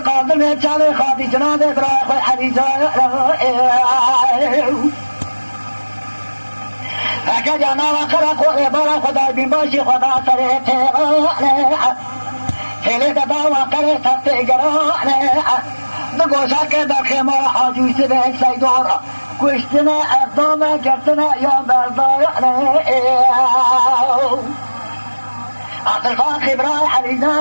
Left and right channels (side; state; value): both; inverted; correlation -1.00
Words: من جامع خادي جناد إبراهيم حريزة أكاد أنا وكراكور إبراهيم خدا بيمشي خدا سريته هلي دبا وكره تتجرا نقوشا كذا خما حاجو سبع سيدورا كشتنا أقدام جتنا يوم برضا عبد الفاخر براي